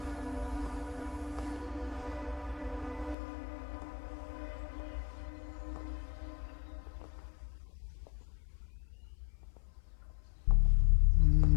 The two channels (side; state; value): right; drops out; at 3.2 s